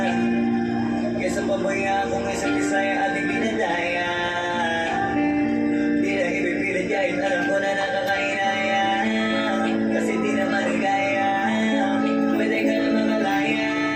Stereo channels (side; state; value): both; identical; correlation 1.00